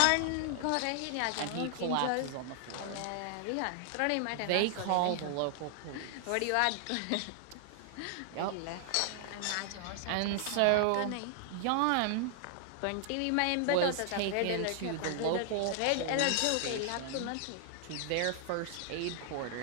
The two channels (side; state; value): both; different; correlation 0.00